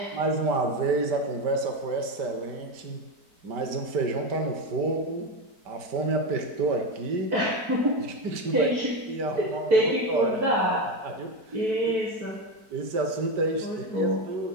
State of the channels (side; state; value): left; late; 4.5 ms